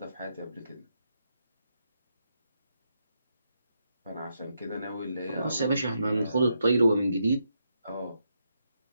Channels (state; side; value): inverted; both; correlation -0.81